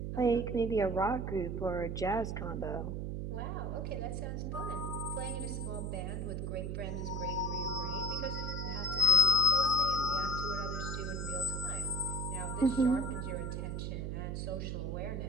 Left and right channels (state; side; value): noise; right; hum, 3 dB below the sound